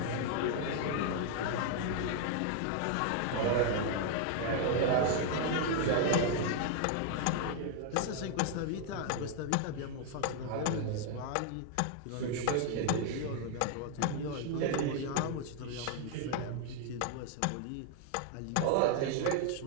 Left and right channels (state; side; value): different; both; correlation 0.00